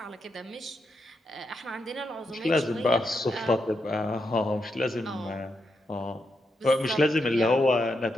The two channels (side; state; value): both; normal; correlation 0.83